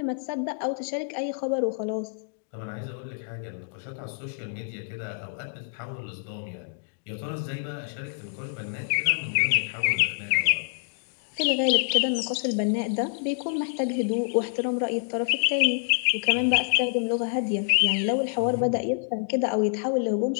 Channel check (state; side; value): silent; right; digital silence